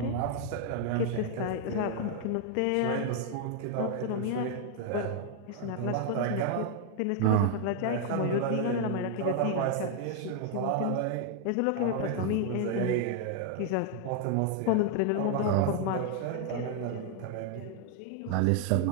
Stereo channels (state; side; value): different; both; correlation 0.00